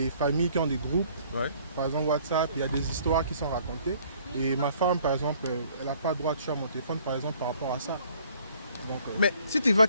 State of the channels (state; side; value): inverted; both; correlation -0.58